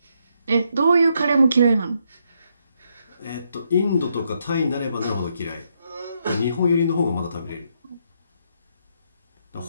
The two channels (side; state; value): both; inverted; correlation -0.77